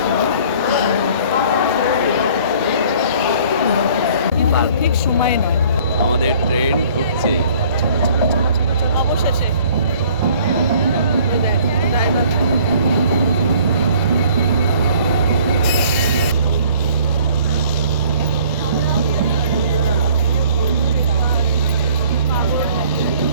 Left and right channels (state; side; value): inverted; both; correlation -0.55